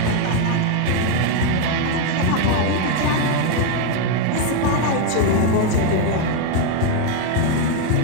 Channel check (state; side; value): different; both; correlation 0.01